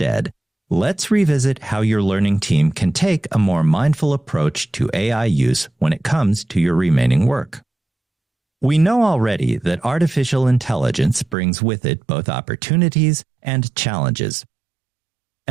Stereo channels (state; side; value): drops out; left; at 11.4 s